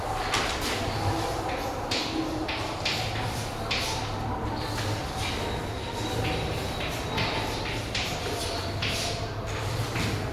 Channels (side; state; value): both; identical; correlation 1.00